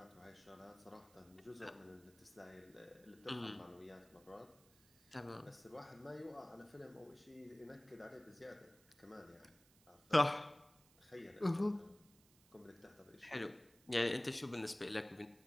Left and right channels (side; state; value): right; noise; hiss, 27 dB below the sound